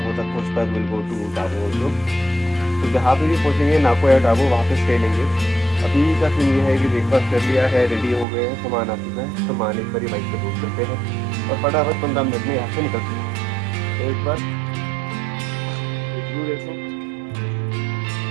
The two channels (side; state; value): left; drops out; at 8.2 s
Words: तक पहुँच पाए will go to Tabo also. तो जहाँ पे भी पहुँचेंगे नाको या टाबो वहाँ पे स्टे लेंगे। अभी का सीन ये है कि ब्रेकफास्ट कर लिया है, रेडी हो गए हैं, सामान आ चुका है, सामान एक बार बाइक पे रोक करते हैं और फटाफट 15 मिनट में यहाँ से निकलते हैं। तो एक बार देखो